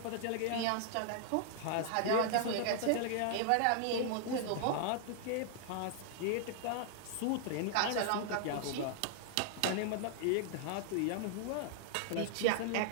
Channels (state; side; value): different; both; correlation 0.00